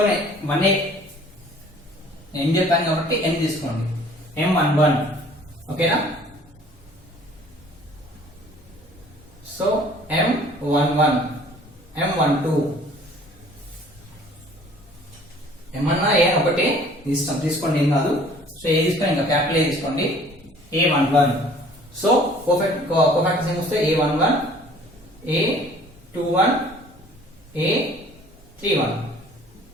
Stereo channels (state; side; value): normal; both; correlation 0.53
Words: వన్ ఏం చెప్పాను కాబట్టి n తీసుకోండి, M11 ఓకేనా. సో M11 M12 ఏమన్నా ఏ ఒకటి తీసుకోండి, ఏం కాదు. సో ఏ తీసుకోండి, ఇంకా క్యాపిటల్ ఏ తీసుకోండి, A11. సో కోఫాక్టర్స్ ఏం వస్తే A11 A21 A31